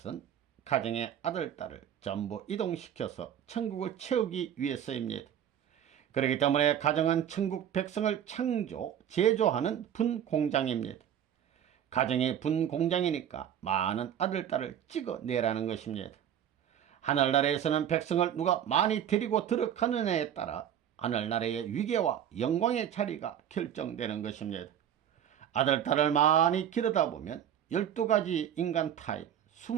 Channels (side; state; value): left; quieter; 9.9 dB